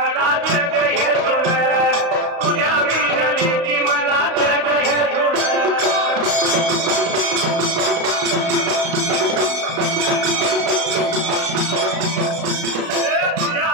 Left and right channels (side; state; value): left; late; 35 ms